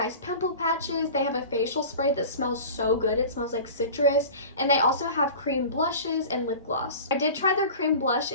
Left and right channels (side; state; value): both; inverted; correlation -0.37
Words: pimple patches, they have a facial spray that smells so good, it smells like citrus, and they also have cream blushes and lip gloss. I did try their cream blush